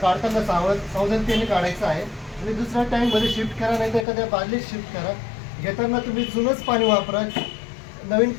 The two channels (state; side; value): drops out; right; at 4.0 s